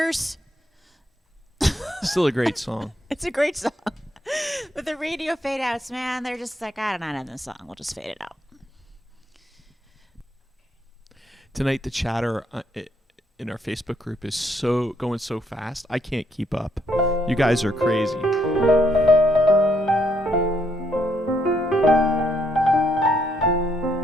Still a great song. It's a great song. But the radio fade outs, man, they're just like, I don't know how to end the song. We'll just fade it out. Tonight, the chatter in our Facebook group is going so fast. I can't keep up. You guys are crazy.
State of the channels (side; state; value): both; normal; correlation 0.73